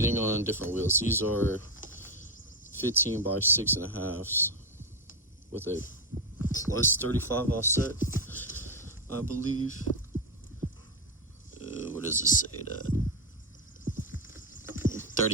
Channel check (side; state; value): both; normal; correlation 0.07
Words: on different wheels. These are 15 by 6.5s with a plus 35 offset, I believe. What does it say that?